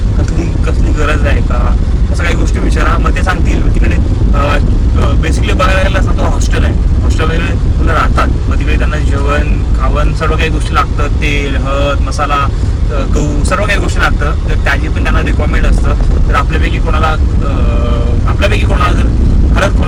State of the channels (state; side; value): identical; both; correlation 1.00